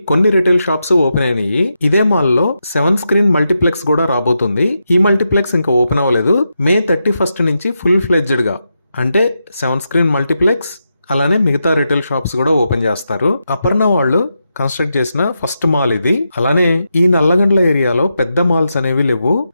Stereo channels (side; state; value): both; inverted; correlation -0.86